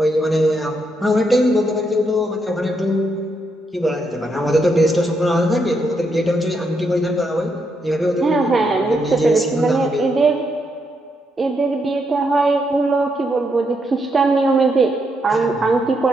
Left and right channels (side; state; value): both; normal; correlation 0.79